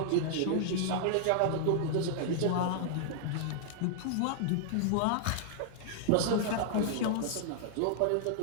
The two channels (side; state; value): both; different; correlation -0.01